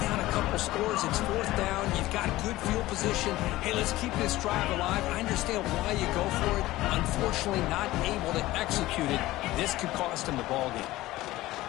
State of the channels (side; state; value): right; quieter; 17.2 dB